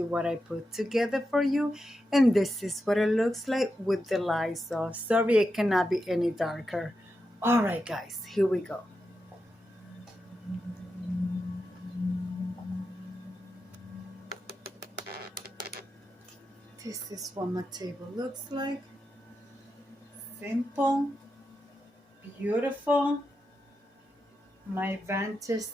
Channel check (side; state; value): both; normal; correlation 0.88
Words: what I put together for you? And this is what it looks like with the lights off. Sorry, it cannot be any darker. All right, guys, here we go. This is what my table looks like. Simple, beautiful, my vintage